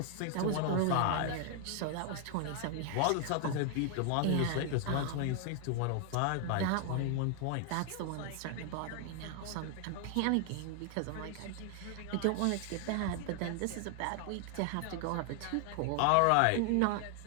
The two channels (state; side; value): different; both; correlation 0.00